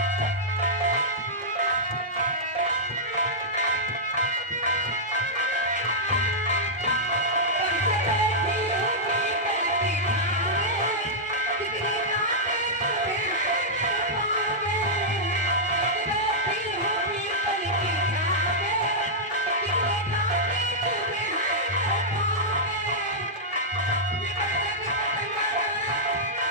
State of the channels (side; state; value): both; normal; correlation -0.10